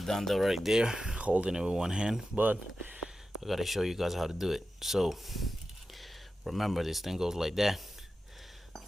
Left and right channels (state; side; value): normal; both; correlation 0.92